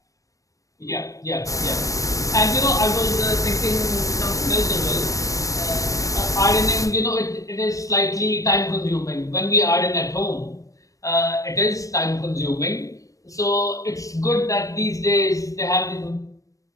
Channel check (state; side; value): late; right; 0.16 ms